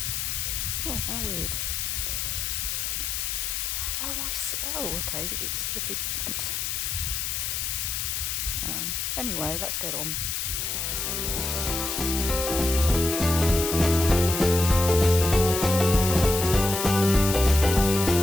Oh, how weird. Oh, okay, it's flipping. Anyway, let's get on.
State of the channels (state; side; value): noise; left; hiss, 2 dB below the sound